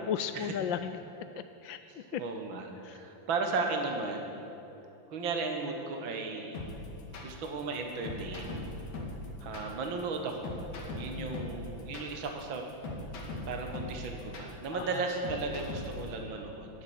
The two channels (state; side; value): late; left; 6.0 ms